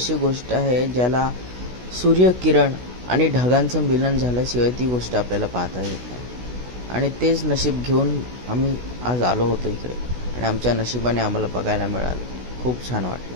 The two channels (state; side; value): late; left; 16 ms